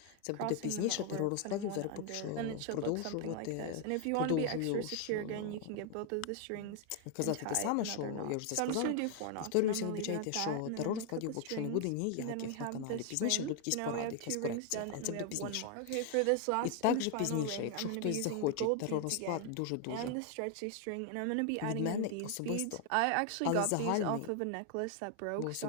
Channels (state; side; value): different; both; correlation 0.00